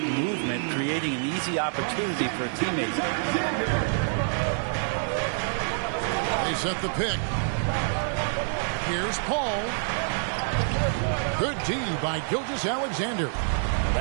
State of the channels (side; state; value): left; silent; digital silence